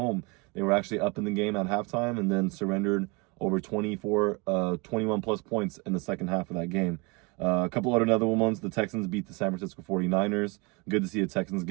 They were actually up in the game at halftime and then surrendered over 21 plus points in the second half of that game. A couple other ones, the Texans beat the San Francisco 49ers. Good to see the Texans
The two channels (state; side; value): quieter; left; 28.3 dB